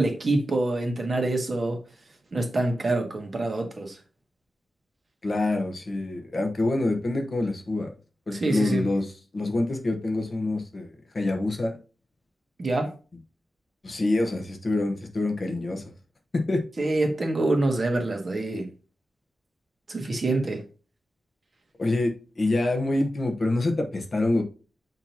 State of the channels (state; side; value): normal; both; correlation 0.92